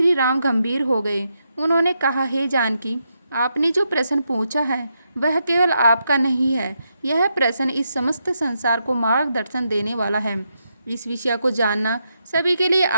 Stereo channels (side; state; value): both; inverted; correlation -0.83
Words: राम गंभीर हो गए। उन्होंने कहा, हे जानकी, आपने जो प्रश्न पूछा है वह केवल आपका नहीं है। यह प्रश्न इस समस्त संसार को मार्गदर्शन देने वाला है। इस विषय को जानना सभी के लिए